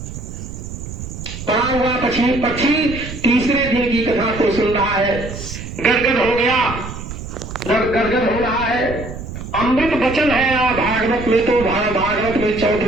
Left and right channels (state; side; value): noise; right; rumble, 9 dB below the sound